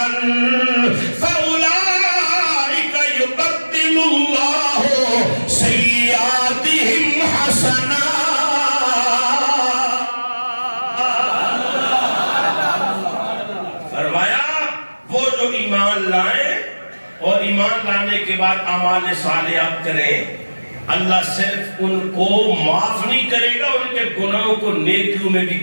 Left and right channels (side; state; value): both; inverted; correlation -1.00